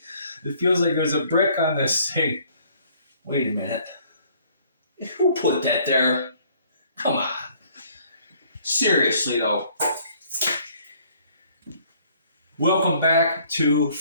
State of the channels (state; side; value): inverted; both; correlation -0.60